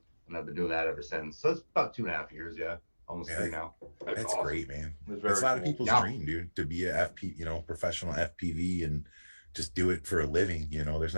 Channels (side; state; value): both; inverted; correlation -1.00